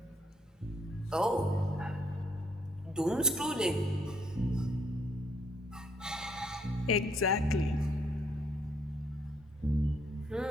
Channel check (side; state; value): both; normal; correlation 0.69